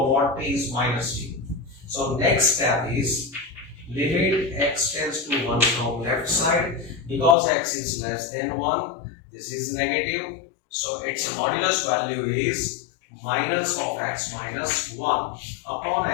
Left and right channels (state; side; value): drops out; right; at 7.4 s